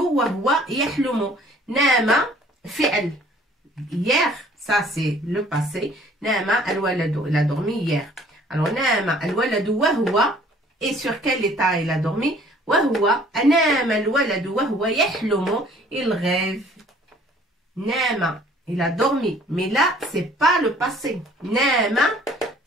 wa huwa yahlumu. Nama fi'l. Hier, ça c'est le passé. Nama al-waladu, il a dormi hier. Alors nama al-waladu wa huwa, et sur quel état il a dormi? Wa huwa, nama al-waladu wa huwa yahlumu, il rêve. Nama, il a dormi. Mais là, c'est pas le passé. Nama,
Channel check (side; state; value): both; normal; correlation 0.55